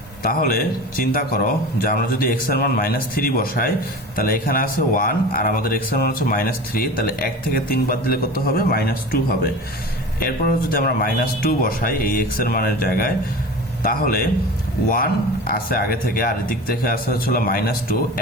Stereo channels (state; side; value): normal; both; correlation 0.34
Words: তাহলে চিন্তা করো যে আমরা যদি x এর মান -3 বসাই, তাহলে এখানে আছে 1 আর আমাদের x এর মান হচ্ছে -3, তাহলে 1 থেকে 3 বাদ দিলে কত হবে, -2 হবে। এরপর যদি আমরা -2 বসাই এই x এর মানের জায়গায়, তাহলে 1 আছে আগে থেকে আর এদিক থেকে আসে হচ্ছিল -2,